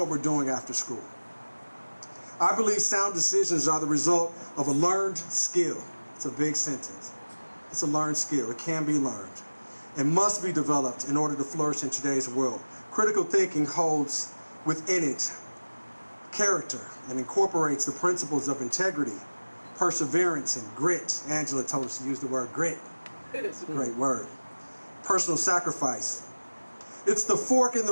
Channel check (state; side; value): inverted; both; correlation -1.00